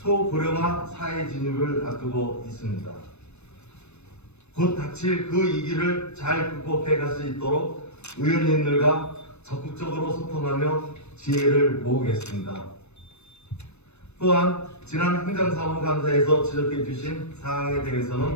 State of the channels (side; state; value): right; late; 0.81 ms